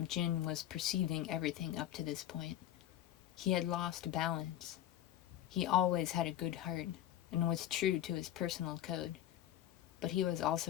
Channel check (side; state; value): right; quieter; 12.2 dB